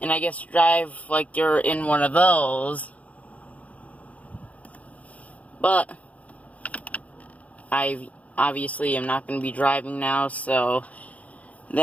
And I guess drive like you're in one of those. But I obviously am not going to be driving now, so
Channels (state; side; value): late; right; 0.069 ms